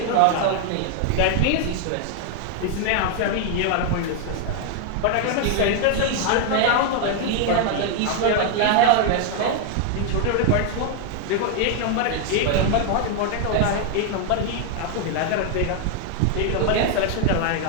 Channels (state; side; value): different; both; correlation 0.00